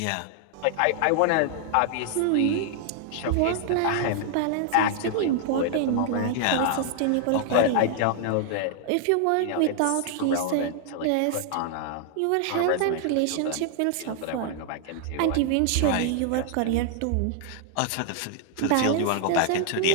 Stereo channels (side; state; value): both; different; correlation 0.00